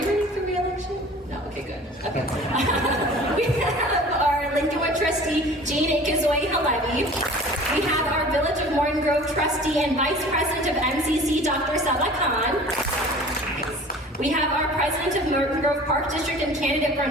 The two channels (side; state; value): both; normal; correlation 0.44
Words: running for re-election? No, okay, good. Okay. We have our Lincolnwood trustee, Jean Ikazoy Halevi. We have our Village of Morton Grove trustee and vice president of MCC, Dr. Saba Khan. We have our president of Morton Grove Park District and candidate for